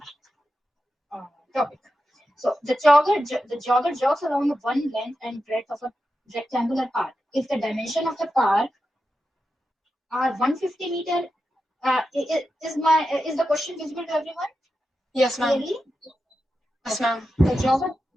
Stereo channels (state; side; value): normal; both; correlation 0.90